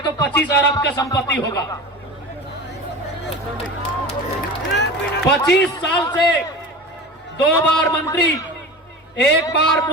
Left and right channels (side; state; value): both; normal; correlation 0.32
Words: 25 अरब का संपत्ति होगा। 25 साल से 2 बार मंत्री, 1 बार